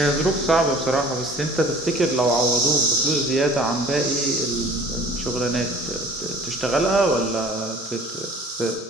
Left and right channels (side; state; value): both; normal; correlation 0.48